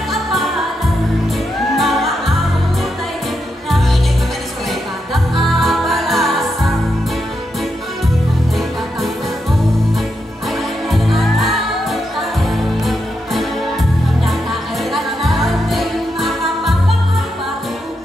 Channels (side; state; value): both; normal; correlation 0.84